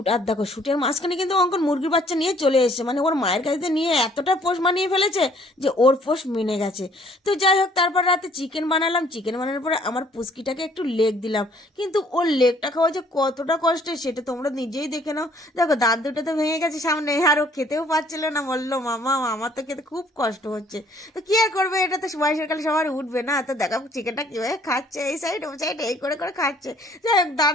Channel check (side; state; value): both; normal; correlation 0.60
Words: আর দেখো শ্যুটের মাঝখানে কিন্তু অঙ্কন মুরগির বাচ্চা নিয়ে চলে এসেছে, মানে ওর মায়ের কাছে নিয়ে এতটা পোষ মানিয়ে ফেলেছে যে ওর পোষ মেনে গেছে। তো যাই হোক, তারপর রাতে চিকেন বানালাম, চিকেন বানানোর পরে আমার পুচকিটাকে একটু লেগ দিলাম, কিন্তু ওর লেগটা খাওয়া যে কতটা কষ্টের সেটা তোমরা নিজেই দেখে নাও। দেখো দাঁত দুটো তো ভেঙে গেছে সামনে, আর ও খেতেও পারছিল না, বললো মামা আমার তো খেতে খুব কষ্ট হচ্ছে। তো কি আর করবে, এটা তো বয়সের কালে সবার উঠবে না। তো দেখো চিকেনটা কীভাবে খাচ্ছে, এই সাইড ও সাইড এই করে করে খাচ্ছে। যাই হোক,